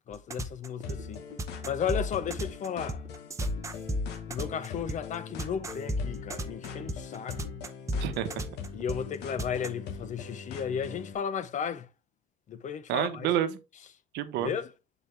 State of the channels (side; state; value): both; normal; correlation 0.33